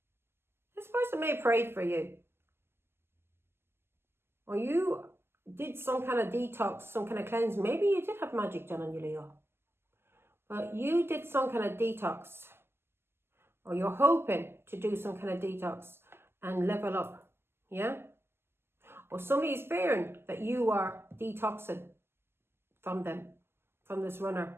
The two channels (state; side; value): late; left; 0.12 ms